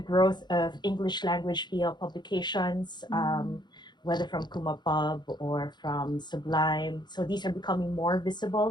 growth of English language BL publications, whether from Kumapub or from Sublime. So these are becoming more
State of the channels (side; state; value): right; late; 0.21 ms